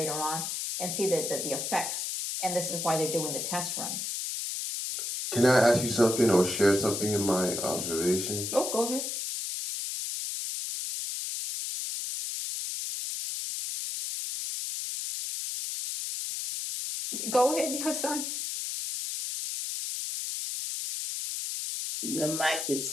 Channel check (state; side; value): noise; left; hiss, 3 dB below the sound